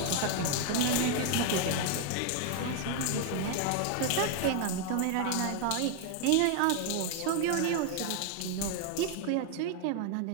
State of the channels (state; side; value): different; both; correlation 0.00